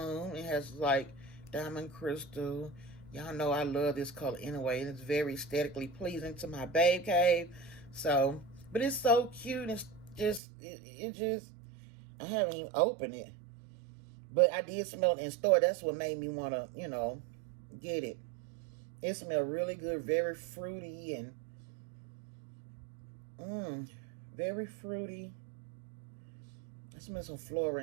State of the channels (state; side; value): drops out; left; at 10.4 s